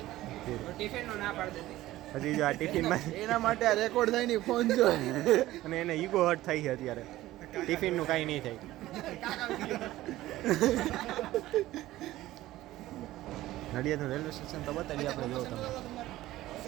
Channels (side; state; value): left; quieter; 15.9 dB